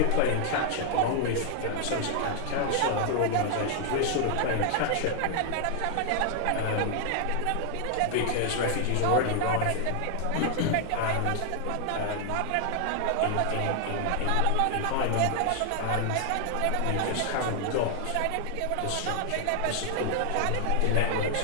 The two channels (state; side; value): different; both; correlation 0.00